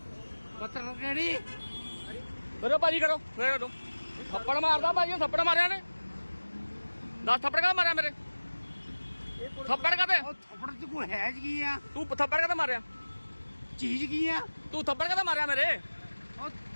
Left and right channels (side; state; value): both; inverted; correlation -1.00